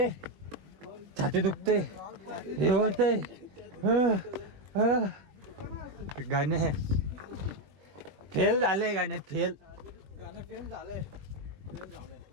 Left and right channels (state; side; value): late; left; 21 ms